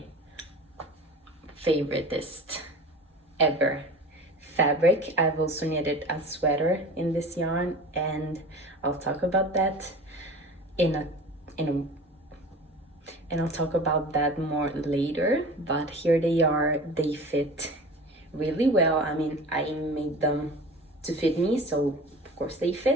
favoriteest ever fabric. I've also knitted a sweater in this yarn, and I'll talk about that and I'll talk about that more later. But here they are. They fit really well. I mean, I made them to fit me, so of course they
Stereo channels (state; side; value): normal; both; correlation 0.38